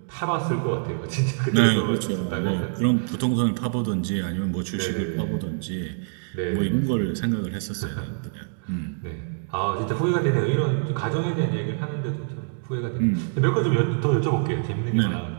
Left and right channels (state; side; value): silent; left; 62 dB below the other